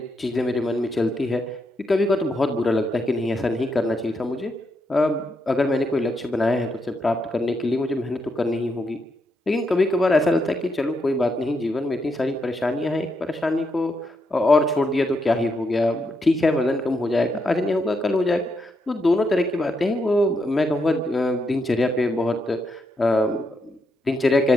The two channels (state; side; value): normal; both; correlation 0.81